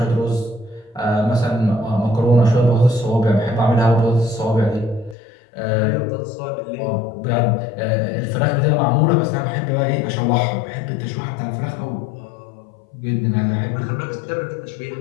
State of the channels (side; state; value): right; drops out; at 5.2 s